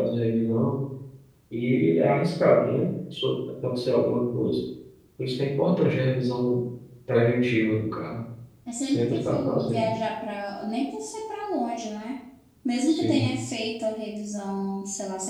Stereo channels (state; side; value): identical; both; correlation 1.00